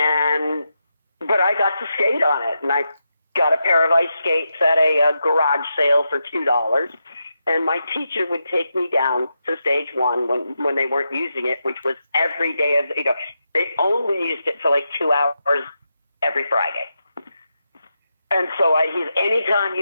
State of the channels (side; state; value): both; inverted; correlation -0.86